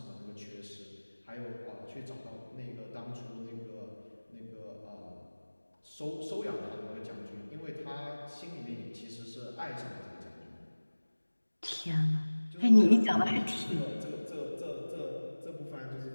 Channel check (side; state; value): both; inverted; correlation -1.00